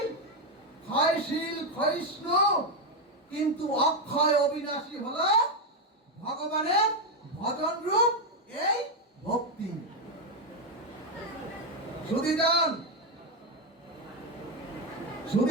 ক্ষয়শীল ক্ষয়িষ্ণু। কিন্তু অক্ষয় অবিনাশী হলো ভগবানের ভজন রূপ এই ভক্তি।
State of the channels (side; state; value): both; normal; correlation 0.05